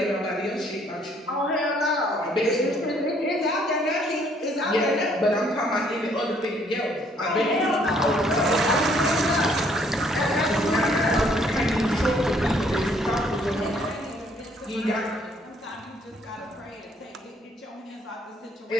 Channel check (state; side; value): normal; both; correlation 0.64